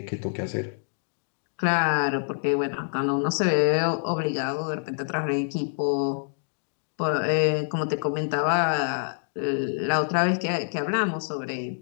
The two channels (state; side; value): silent; right; digital silence